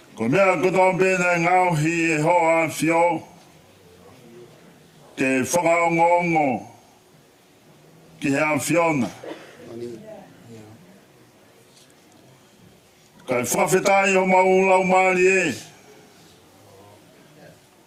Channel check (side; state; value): both; identical; correlation 1.00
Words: Ko mea kotoa pe nei ngauhi e hoa Fio ke whakaongongo ki hea Fiona. Kai whawhetai o maulau maari e.